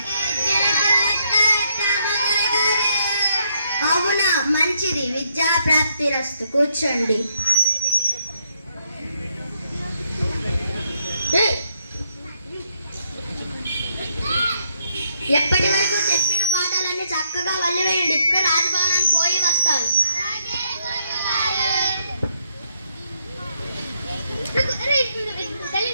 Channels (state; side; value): inverted; both; correlation -0.75